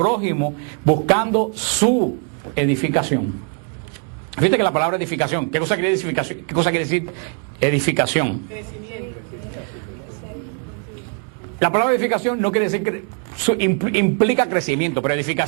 buscando su edificación. Fíjate que la palabra edificación, ¿qué cosa quiere edificación? ¿Qué cosa quiere decir edificación? La palabra edificación no quiere decir que implica crecimiento, pero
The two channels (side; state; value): left; quieter; 39.2 dB